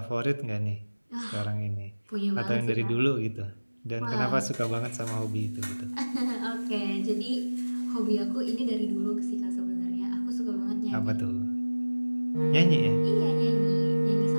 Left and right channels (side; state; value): both; inverted; correlation -1.00